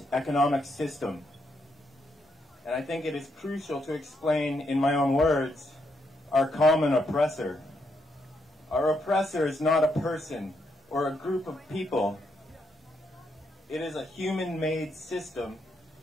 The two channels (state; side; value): normal; both; correlation 0.78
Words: economic system. And I think it is crucial to explain in my own words our common oppressor. Our oppressor is not a person or a group of people. It is a human-made system